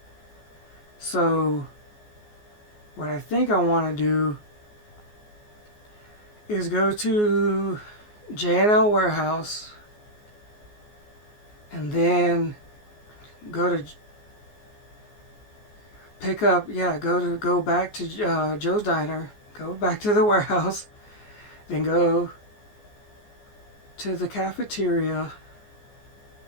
So what I think I want to do is go to J&L Warehouse, and then go to pick up, yeah, go back to Joe's Diner, go back to the warehouse, then go to the cafeteria,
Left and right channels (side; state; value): right; late; 14 ms